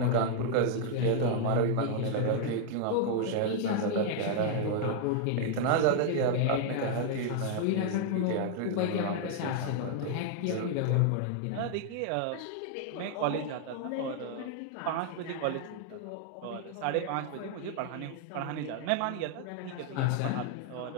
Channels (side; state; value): both; different; correlation 0.00